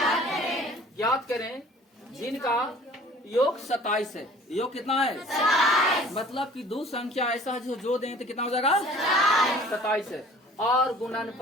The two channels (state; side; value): normal; both; correlation 0.49